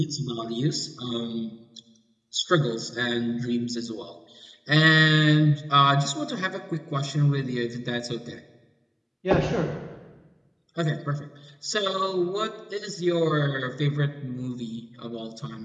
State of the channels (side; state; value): both; identical; correlation 1.00